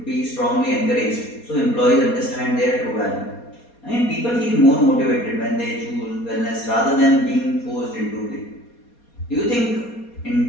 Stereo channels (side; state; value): right; late; 4.2 ms